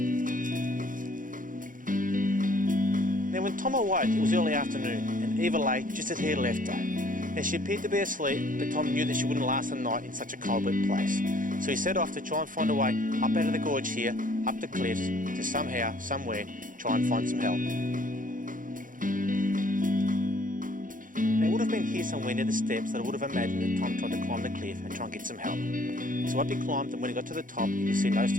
Now when Tom awoke, it was early afternoon, and Eva lay just as he had left her. Now she appeared to be asleep, but Tom knew that she wouldn't last the night in such a cold, wet place. So he set off to try and find a way up out of the gorge here, up the cliffs, to somehow, somewhere, try and find some help. Now it would have been here somewhere near the steps that I would have imagined that Tom tried to climb the cliff and try and get some help. So up he climbed, and when he got to the top, he could see no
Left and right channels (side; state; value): left; late; 0.39 ms